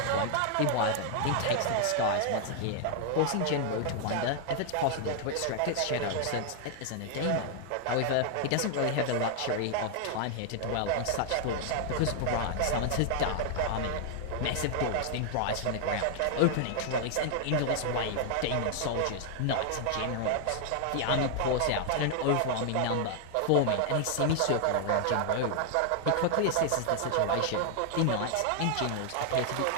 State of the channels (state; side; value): different; both; correlation 0.00